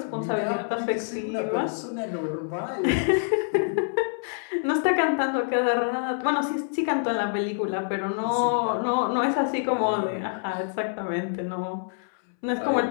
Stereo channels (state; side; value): silent; right; 61 dB below the other